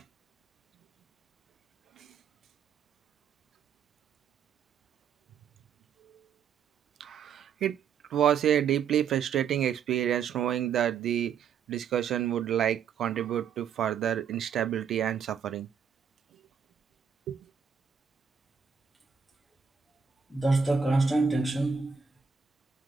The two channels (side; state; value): left; quieter; 6.9 dB